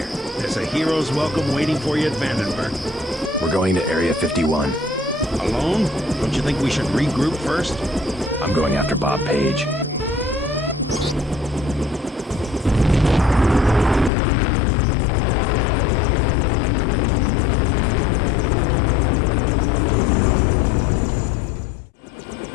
There's a hero's welcome waiting for you at Vandenberg. We're going to Area 51. Alone? Don't you think we should regroup first? I'm going after Bob Page.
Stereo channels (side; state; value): right; drops out; at 14.1 s